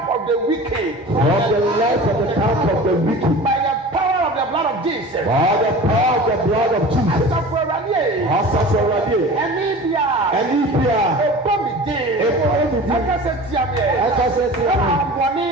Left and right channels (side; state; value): both; normal; correlation 0.38